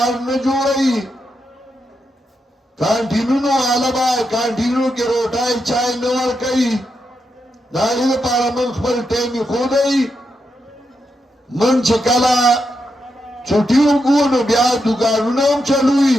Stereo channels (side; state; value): both; normal; correlation 0.84